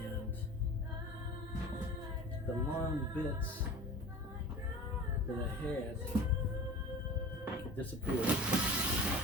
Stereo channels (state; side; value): normal; both; correlation 0.38